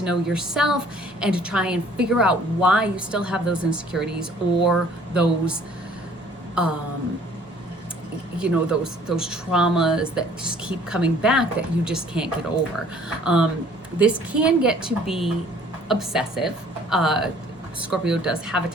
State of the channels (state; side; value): normal; both; correlation 0.56